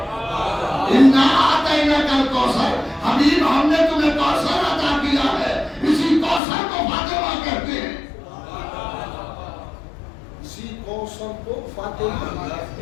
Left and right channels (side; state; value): right; drops out; at 6.4 s